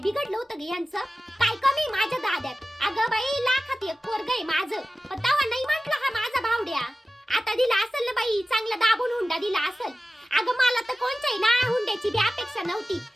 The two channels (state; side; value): normal; both; correlation 0.96